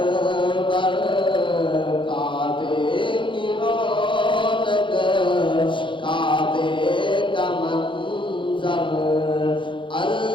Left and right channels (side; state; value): right; late; 0.24 ms